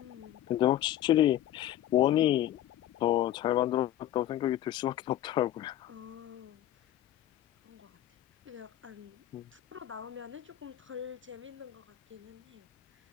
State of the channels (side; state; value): right; quieter; 12.6 dB